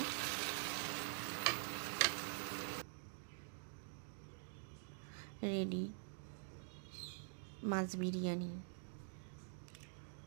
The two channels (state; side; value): silent; left; digital silence